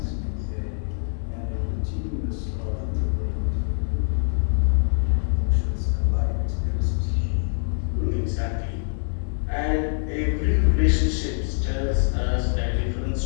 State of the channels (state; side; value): silent; right; digital silence